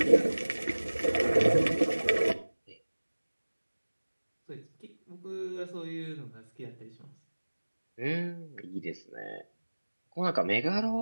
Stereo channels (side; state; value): both; inverted; correlation -1.00